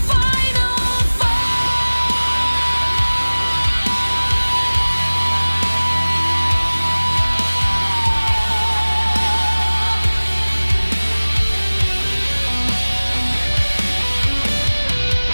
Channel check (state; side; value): inverted; both; correlation -1.00